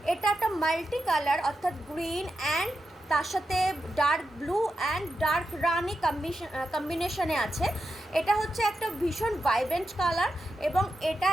এটা একটা মাল্টি কালার অর্থাৎ গ্রিন অ্যান্ড তার সাথে ডার্ক ব্লু অ্যান্ড ডার্ক রানি কম্বিনেশনে আছে। এটা হচ্ছে একটা ভীষণ ভাইব্রেন্ট কালার এবং এটা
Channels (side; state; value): both; normal; correlation 0.88